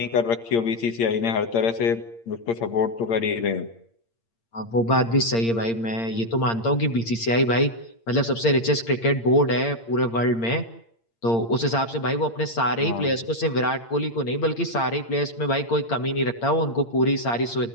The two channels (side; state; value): right; late; 8.7 ms